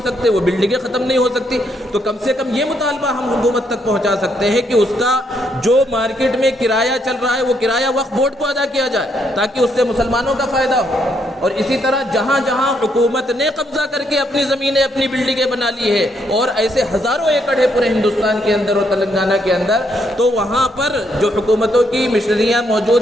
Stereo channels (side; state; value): both; normal; correlation 0.74